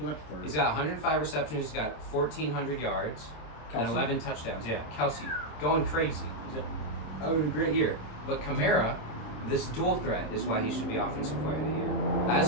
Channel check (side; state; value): right; late; 26 ms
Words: might be third. He's got 105 receptions. He's got 1,400 yards and Kelsey? 11 touchdowns. Yeah, Kelsey going crazy. He's having a great year. But Kamara, this dual threat is why he should be Offensive Player of the Year.